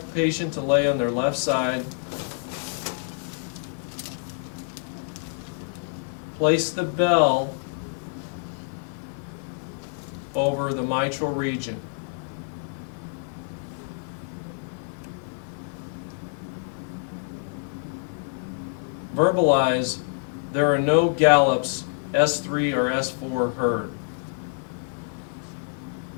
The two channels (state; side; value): silent; right; digital silence